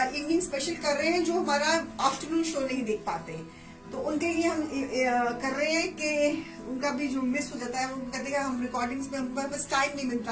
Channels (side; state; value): both; identical; correlation 1.00